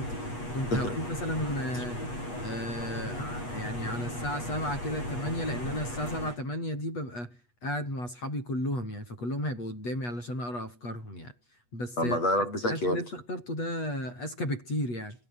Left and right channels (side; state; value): right; late; 8.3 ms